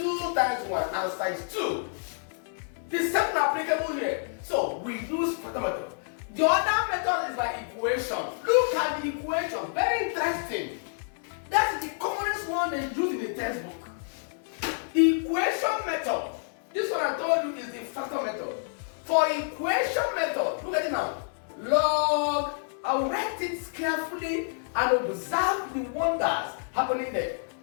times 1 answer is 2. The same applicable here. So we use factor method. The other method is by equation. Look at the equation. Very interesting. That's the commonest one they use in the textbook. Equation method. This one I told you is the factor method. For equation method, look at it now. Log, I'll write it carefully and observe the wonders happening there.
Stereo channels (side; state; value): right; silent; digital silence